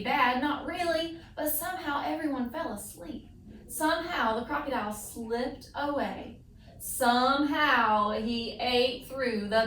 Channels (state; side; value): identical; both; correlation 1.00